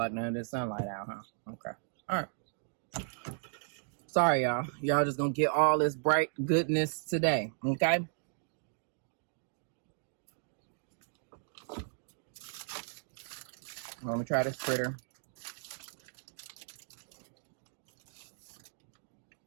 none of this sunlight out, huh? Okay. All right. Sorry, y'all. Y'all just gonna get all this bright goodness today, okay? Let me try this fritter.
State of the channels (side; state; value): left; silent; digital silence